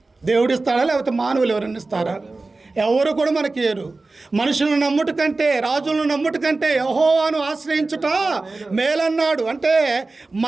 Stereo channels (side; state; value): left; quieter; 3.4 dB